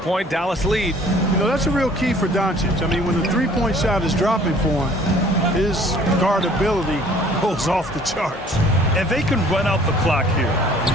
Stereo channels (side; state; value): both; normal; correlation 0.54